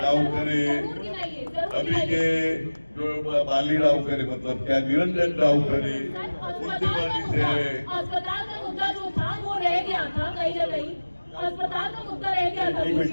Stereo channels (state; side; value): inverted; both; correlation -1.00